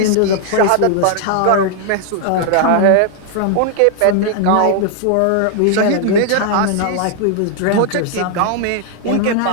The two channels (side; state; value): both; different; correlation 0.00